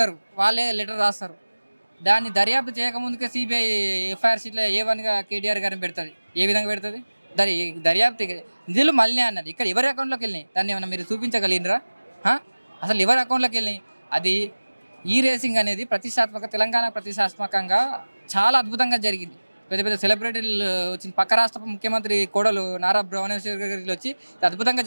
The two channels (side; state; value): both; inverted; correlation -1.00